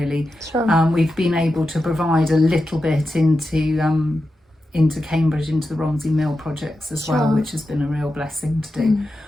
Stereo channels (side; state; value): both; normal; correlation 0.90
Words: Sure. We've been able to provide a little bit into Cambridge, into the Romsey Mill projects as well, which has been a real blessing to do.